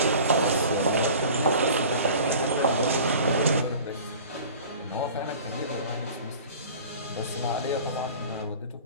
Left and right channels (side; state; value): both; inverted; correlation -0.43